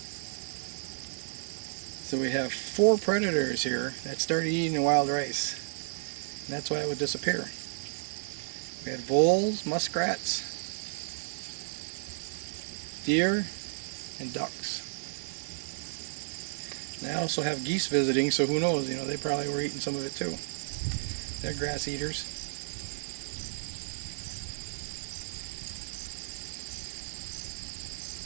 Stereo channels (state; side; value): silent; left; digital silence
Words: So we have 4 predators here that started eating the wild rice. And that's why it would disappear. We had voles, muskrats, deer, and ducks. And I also have geese visiting, so who knows, you know, they probably were eating some of it too. They're grass eaters.